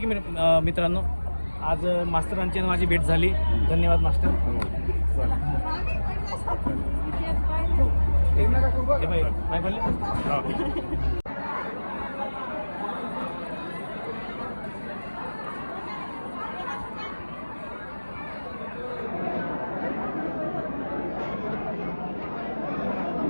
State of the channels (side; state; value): both; inverted; correlation -1.00